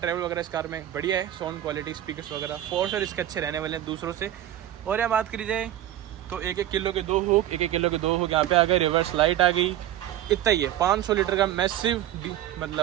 वगैरह इस कार में बढ़िया है। साउंड क्वालिटी, स्पीकर्स वगैरह फॉर श्योर इसके अच्छे रहने वाले हैं दूसरों से। और यहाँ बात करी जाए तो 1-1 किलो के 2 हुक, 1-1 किलो के 2 हुक यहाँ पे आ गए, रिवर्स लाइट आ गई, इतना ही है। 500 लीटर का मैसिव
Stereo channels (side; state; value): left; quieter; 12.6 dB